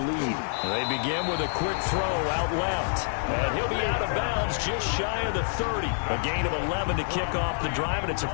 They begin with a quick throw out left. And he'll be out of bounds just shy of the 30. A gain of 11 to kick off the drive, and it's a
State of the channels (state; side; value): silent; right; 60 dB below the other